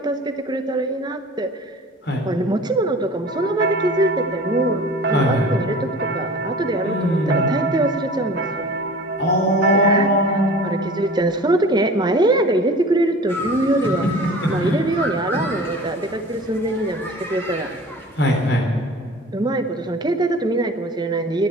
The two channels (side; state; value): both; normal; correlation 0.41